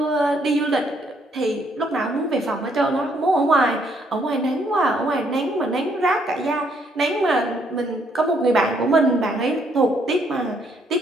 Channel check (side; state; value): both; normal; correlation 0.70